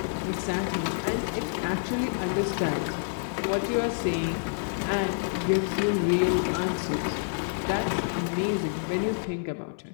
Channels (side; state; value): right; silent; digital silence